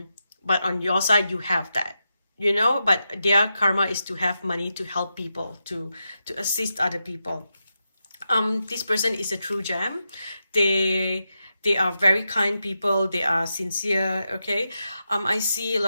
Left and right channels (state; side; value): inverted; both; correlation -0.88